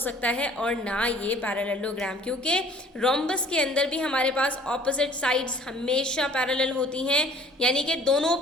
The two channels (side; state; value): both; normal; correlation 0.53